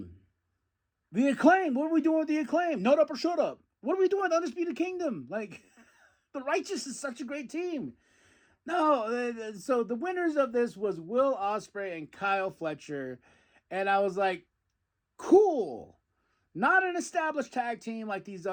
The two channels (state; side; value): identical; both; correlation 1.00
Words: The Acclaim. What are we doing with the Acclaim? Note up or shut up. What are we doing with Undisputed Kingdom? Like, the Righteous is such a great team. No, so the winners of this was Will Ospreay and Kyle Fletcher. And I was like, cool. Not an established tag team like these